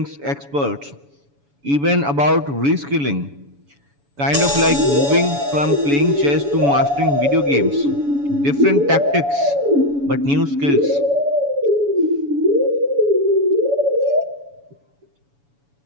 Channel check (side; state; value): left; late; 7.1 ms